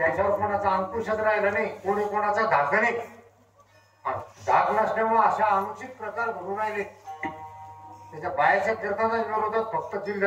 कोणाचा अंकुशच राहिला नाही. कोणी कोणाचा धाक नाही. धाक नसल्यामुळे अशा अनुचित प्रकार घडून राहिले. त्याच्या बायाच्या कीर्तनाच्या विरोधात फक्त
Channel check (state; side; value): identical; both; correlation 1.00